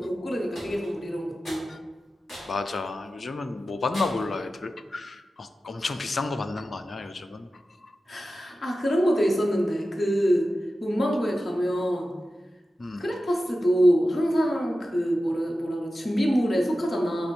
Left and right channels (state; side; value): normal; both; correlation 0.94